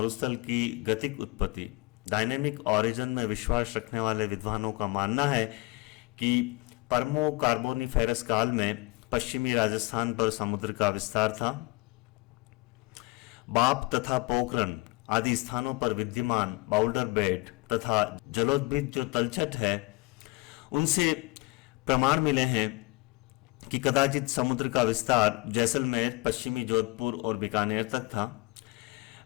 की गतिक उत्पत्ति, डायनेमिक ओरिजिन में विश्वास रखने वाले विद्वानों का मानना है कि पर्मो कार्बोनिफेरस काल में पश्चिमी राजस्थान पर समुद्र का विस्तार था। बाप तथा पोखरन आदि स्थानों पर विद्यमान बाउल्डर बेड तथा जलोद्भिद जो तलछट है, उनसे प्रमाण मिले हैं कि कदाचित समुद्र का विस्तार जैसलमेर, पश्चिमी जोधपुर और बीकानेर तक था।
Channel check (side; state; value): right; quieter; 24.0 dB